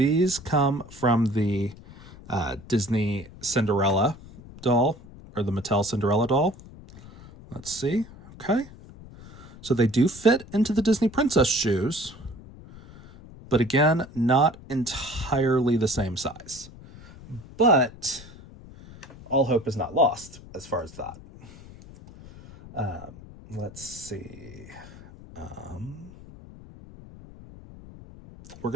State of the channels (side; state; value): left; noise; rumble, 18 dB below the sound